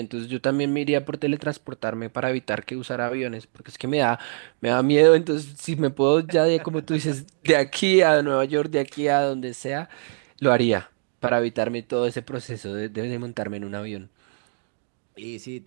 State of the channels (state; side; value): silent; left; digital silence